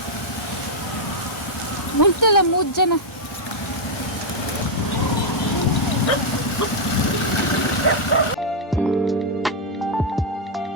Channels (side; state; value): both; normal; correlation -0.03